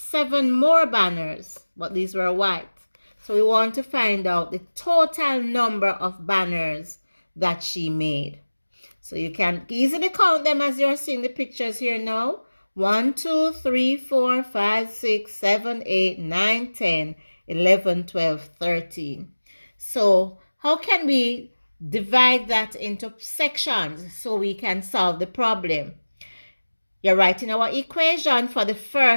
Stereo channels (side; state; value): both; inverted; correlation -1.00